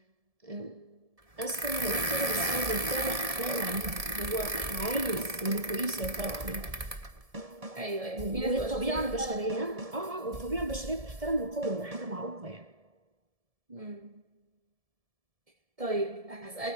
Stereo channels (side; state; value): left; late; 1.7 ms